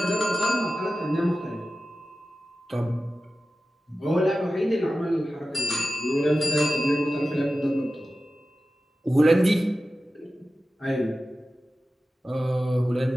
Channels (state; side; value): normal; both; correlation 0.94